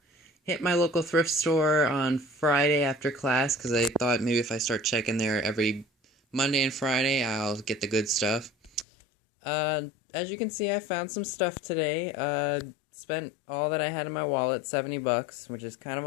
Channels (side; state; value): right; drops out; at 8.8 s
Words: Hit my local thrift store on Friday after class because I thought maybe if I start checking there every Monday and Friday, I'll get the good stuff. As you can see, I found some stuff today. Spent all that I had in my wallet, 70 bucks, which is kind of